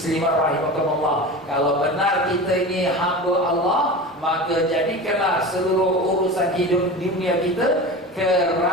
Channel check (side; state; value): both; normal; correlation 0.31